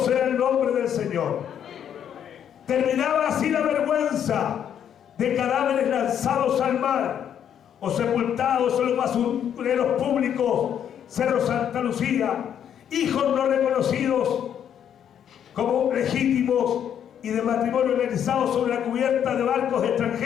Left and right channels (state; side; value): quieter; right; 9.2 dB